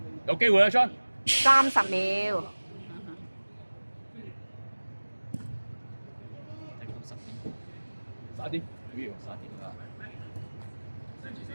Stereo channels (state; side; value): inverted; both; correlation -1.00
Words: 有機會啊，昌！30秒。快啲！不要殺點啦！